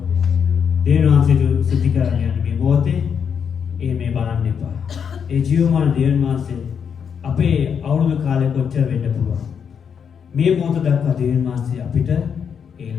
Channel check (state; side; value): quieter; right; 7.2 dB